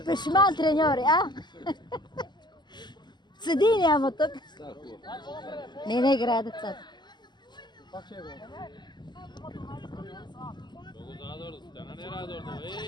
пешман треньори, а? Седи няма тук. Не играе децата. Пак ще е гол. Много задорно, стана не радорно.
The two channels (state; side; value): late; right; 0.21 ms